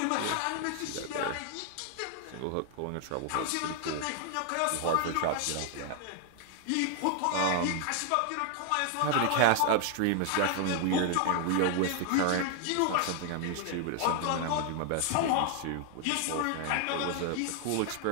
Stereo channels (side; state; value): both; different; correlation 0.00